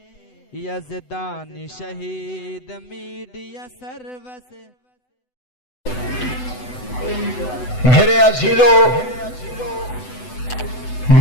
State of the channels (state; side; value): late; right; 8.0 ms